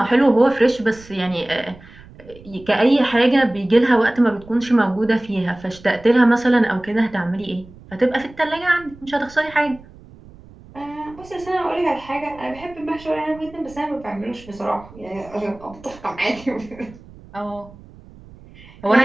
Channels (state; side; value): noise; right; rumble, 21 dB below the sound